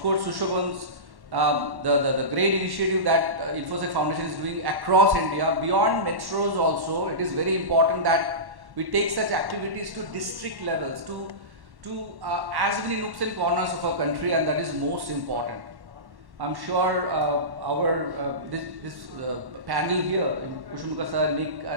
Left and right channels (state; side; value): late; left; 1.1 ms